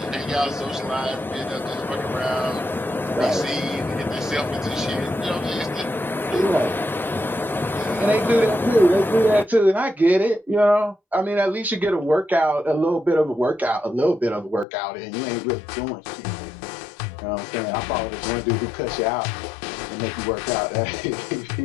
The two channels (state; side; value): drops out; right; at 14.7 s